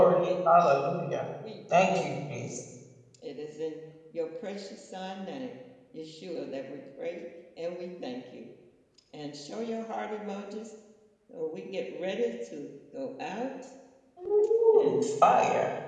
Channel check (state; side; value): identical; both; correlation 1.00